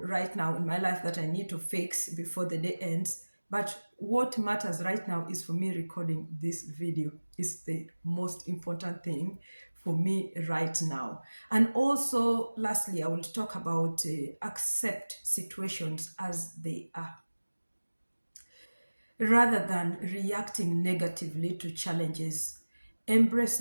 right now in my life that I need to fix before the day ends. But what matters right now is for me recording this video. Is the most important thing for me right now. And also, lastly, I will talk about accept situations as they are rather than reacting negatively to challenges. Embrace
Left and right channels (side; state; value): both; inverted; correlation -1.00